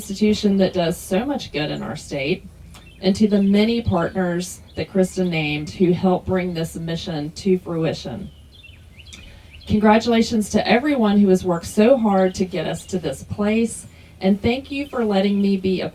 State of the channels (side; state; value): both; identical; correlation 1.00